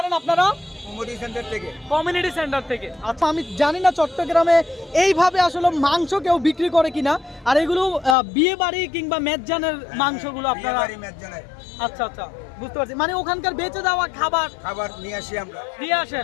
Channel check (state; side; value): drops out; right; at 8.2 s